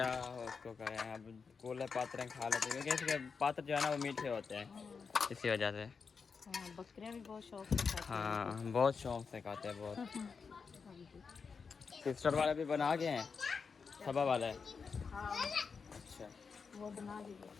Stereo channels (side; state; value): right; quieter; 5.4 dB